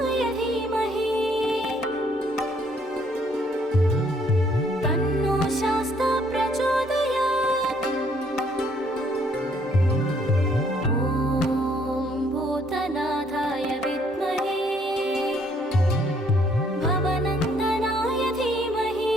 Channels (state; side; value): normal; both; correlation 0.66